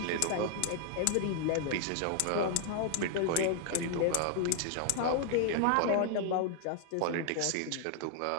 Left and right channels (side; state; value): both; different; correlation -0.01